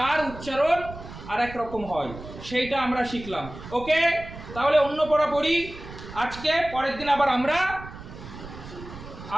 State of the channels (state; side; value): noise; right; rumble, 14 dB below the sound